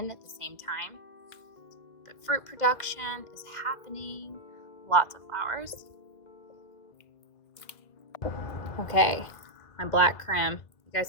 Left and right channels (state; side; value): late; right; 1.8 ms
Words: at the same time. But fruit production is happening. Lots of flowers. Okay, my black creme. You